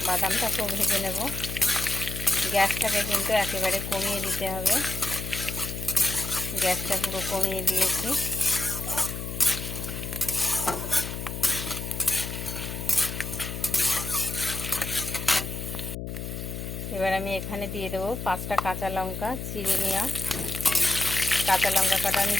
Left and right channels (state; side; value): noise; left; hum, 6 dB below the sound